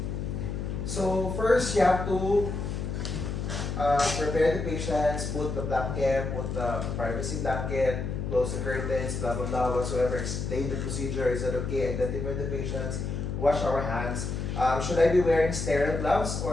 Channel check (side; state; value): left; noise; hum, 3 dB below the sound